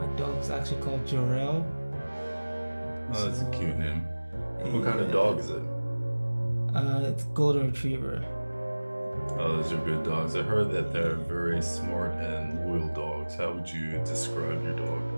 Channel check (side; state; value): both; inverted; correlation -1.00